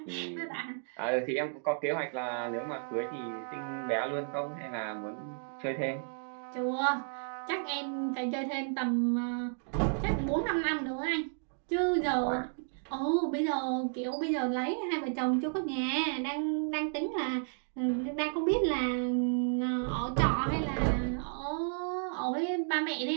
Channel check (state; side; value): silent; left; digital silence